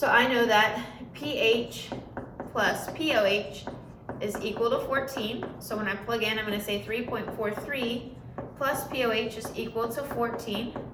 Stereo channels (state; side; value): identical; both; correlation 1.00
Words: I know that pH plus POH is equal to 14. So when I plug in, I'm going to say 3.43 plus POH is equal to 14.